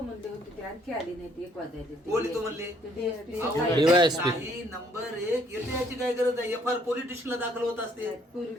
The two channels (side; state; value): both; normal; correlation 0.65